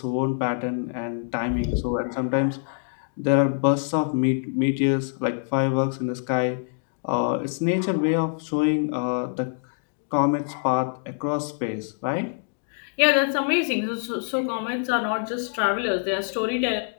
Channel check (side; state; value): right; silent; digital silence